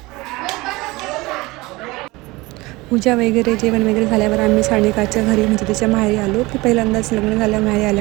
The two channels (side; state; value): left; quieter; 22.0 dB